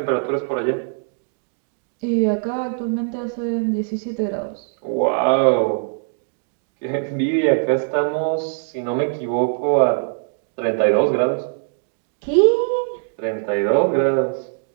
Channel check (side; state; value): left; silent; digital silence